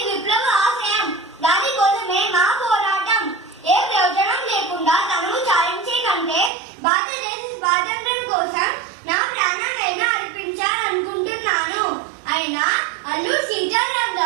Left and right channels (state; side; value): drops out; left; at 6.5 s